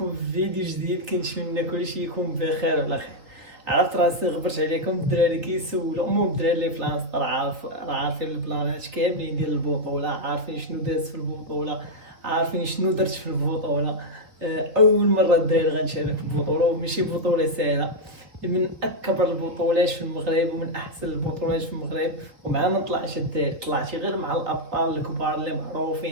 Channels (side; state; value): left; late; 3.3 ms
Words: في فيديو جديد. كنتمنى كلشي يكون بخير وعلى خير. عرفت راسي غبرت عليكم الدراري كيسولوا، المهم الدراري اللي في لانستا راه عارفين البلانات كاملين ديال البطوله، عارفين شنو داز في البطوله، عارفين شنو درت في البطوله. اول مره الدراري غنشارك في البطوله، وماشي بطوله سهله، من اكبر البطولات في المغرب ومن احسن البطولات في المغرب. ومع ما طلعش الدراري، طلعتي غير مع الابطال الكبار اللي